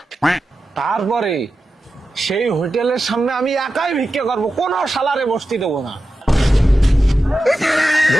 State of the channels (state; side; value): normal; both; correlation 0.92